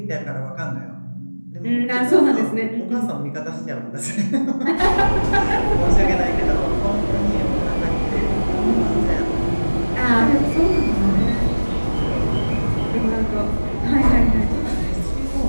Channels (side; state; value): both; inverted; correlation -1.00